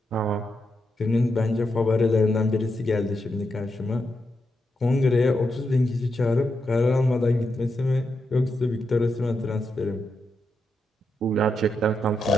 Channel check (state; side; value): normal; both; correlation 0.84